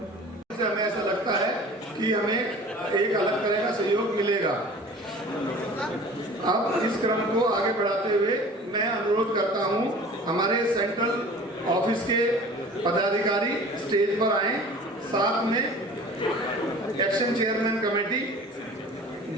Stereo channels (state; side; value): normal; both; correlation 0.43